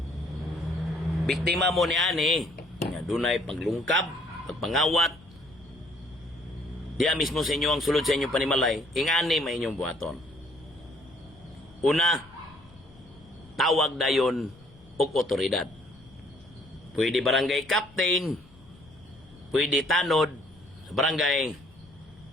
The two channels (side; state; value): left; noise; rumble, 24 dB below the sound